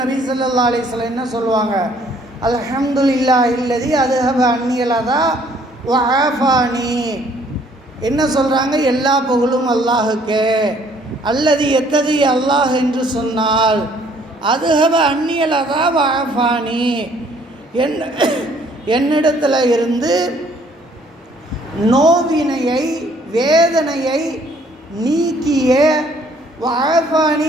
நபி ஸல்லல்லாஹு அலைஹி வஸல்லம் என்ன சொல்லுவாங்க? அல்ஹம்துலில்லாஹ் இல்லதி அதுஹப அன்னியல் அதா வ ஆஃபானி. என்ன சொல்கிறாங்க? எல்லா புகழும் அல்லாஹுக்கே. அல்லது எத்தகைய அல்லாஹ் என்று சொன்னால் அதுஹப அன்னியல் அதா வ ஆஃபானி, என்னிடத்தில் இருந்து நோவினையை, வேதனையை நீக்கிய, வாஃபானி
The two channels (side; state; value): both; normal; correlation 0.61